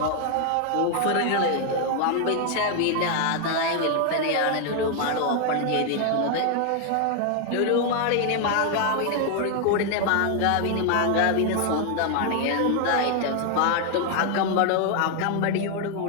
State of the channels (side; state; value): both; different; correlation 0.00